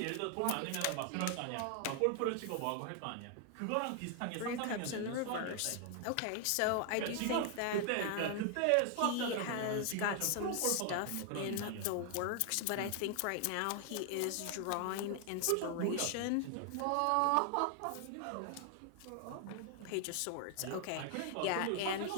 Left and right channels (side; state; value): both; different; correlation 0.00